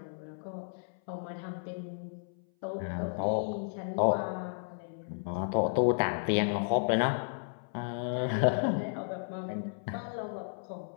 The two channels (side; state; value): right; silent; 56 dB below the other